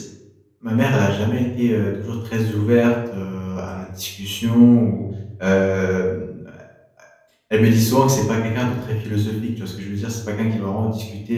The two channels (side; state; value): both; identical; correlation 1.00